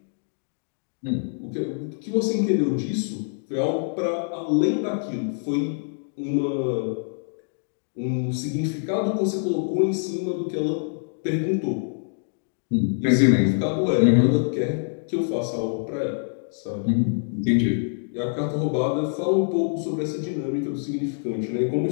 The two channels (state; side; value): silent; right; digital silence